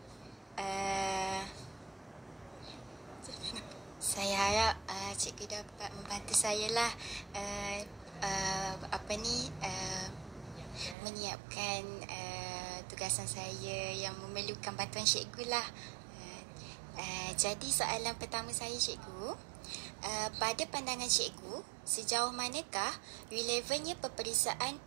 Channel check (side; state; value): left; drops out; at 11.0 s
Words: cikgu dapat membantu saya lah menyiapkan tugasan saya yang memerlukan bantuan cikgu lah. Jadi soalan pertama saya, cikgu, pada pandangan cikgu, sejauh manakah relevannya peperiksaan